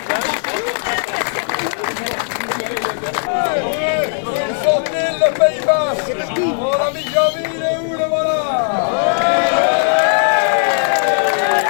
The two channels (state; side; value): silent; right; digital silence